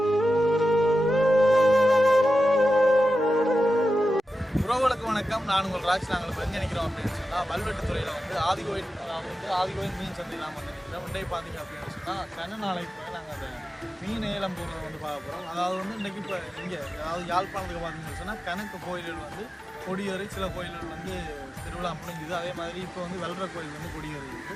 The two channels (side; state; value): both; normal; correlation 0.92